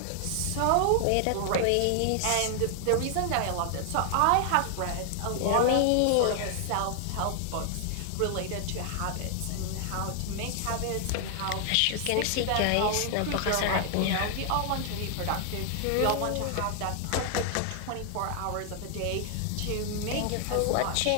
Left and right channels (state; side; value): different; both; correlation 0.00